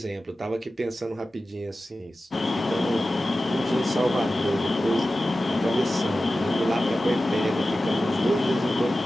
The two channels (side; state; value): both; normal; correlation 0.94